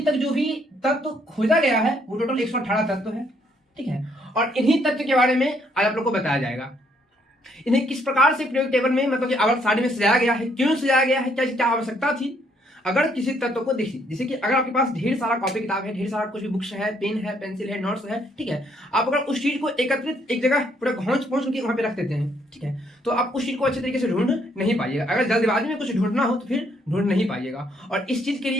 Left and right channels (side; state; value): both; normal; correlation 0.69